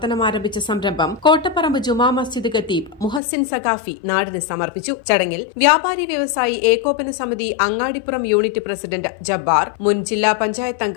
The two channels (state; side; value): drops out; right; at 3.2 s